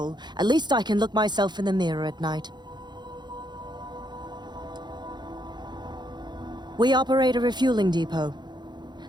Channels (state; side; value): late; left; 0.21 ms